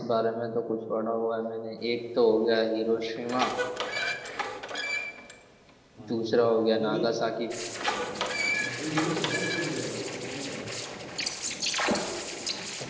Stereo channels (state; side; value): identical; both; correlation 1.00